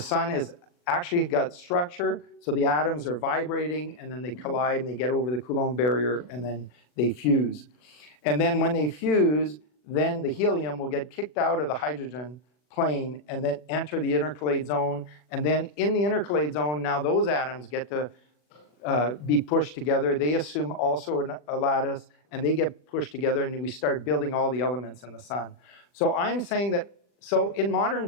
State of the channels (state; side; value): late; right; 40 ms